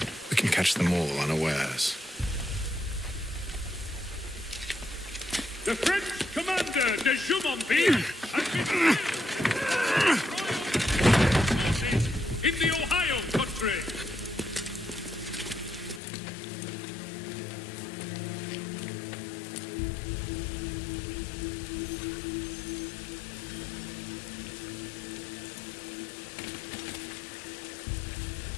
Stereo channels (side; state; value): right; drops out; at 16.0 s